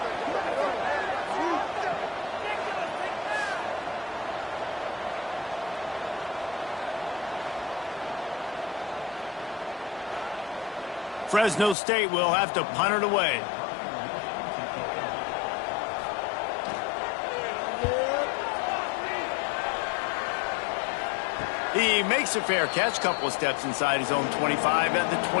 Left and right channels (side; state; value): right; drops out; at 11.8 s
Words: Fresno State will have to punt it away. He makes a fair catch, couple of steps inside his own 25 at the